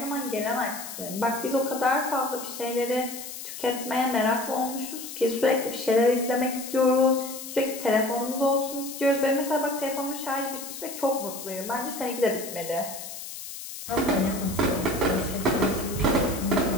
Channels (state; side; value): noise; left; hiss, 10 dB below the sound